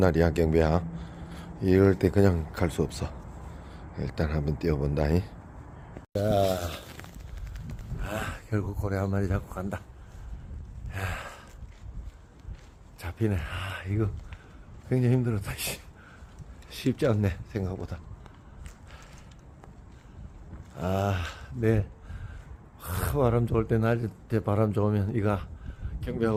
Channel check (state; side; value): identical; both; correlation 1.00